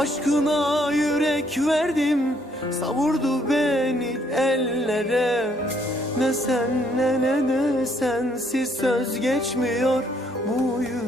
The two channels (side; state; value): both; normal; correlation 0.68